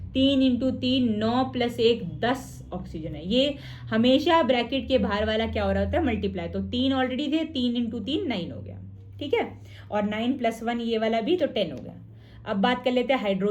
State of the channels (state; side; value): identical; both; correlation 1.00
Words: 3 इंटू 3 9 प्लस 1 10 ऑक्सीजन है। ये हमेशा ब्रैकेट के बाहर वाला क्या हो रहा होता है, मल्टीप्लाई। तो 3 ऑलरेडी थे, 3 इंटू 3 9 हो गया। ठीक है, और 9 प्लस 1 ये वाला भी, तो 10 हो गया। अब बात कर लेते हैं